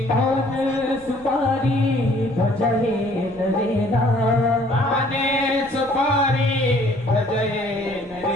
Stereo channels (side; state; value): left; noise; rumble, 24 dB below the sound